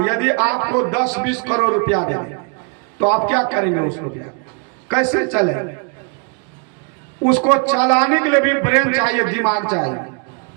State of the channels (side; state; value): left; quieter; 35.8 dB